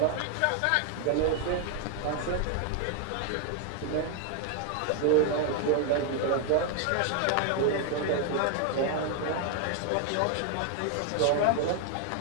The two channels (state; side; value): different; both; correlation 0.00